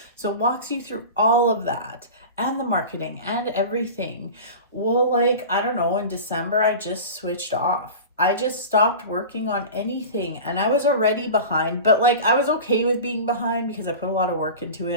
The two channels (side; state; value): both; inverted; correlation -0.33